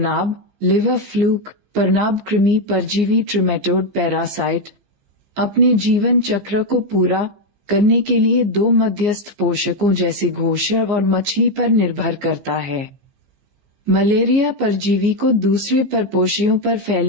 लिवर फ्लूक, परनाभ कृमि परजीवी ट्रिमेटोड पैरासाइट अपने जीवन चक्र को पूरा करने के लिए दो मध्यस्थ पोषकों जैसे घोषर और मछली पर निर्भर करता है। मलेरिया परजीवी को दूसरे परपोषियों पर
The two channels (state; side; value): late; left; 14 ms